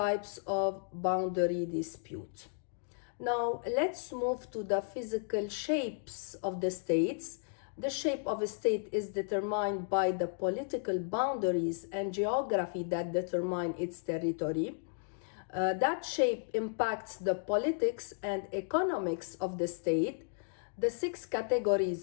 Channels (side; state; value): right; silent; digital silence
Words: of boundary dispute. Now let's move to the physical shapes of the states. The shape of a state is determined by the political boundaries and geography that determine its territory. That shape impacts the politics and economics of the state. The 6